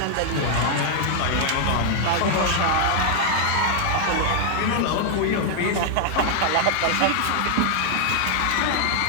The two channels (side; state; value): both; different; correlation 0.00